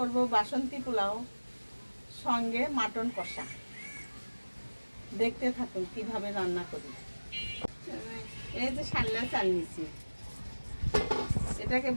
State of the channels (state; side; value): inverted; both; correlation -1.00